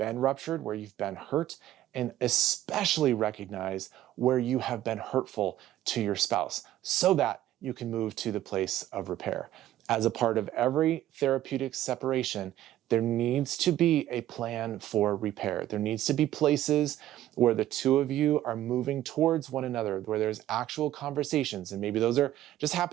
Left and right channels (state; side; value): quieter; left; 13.3 dB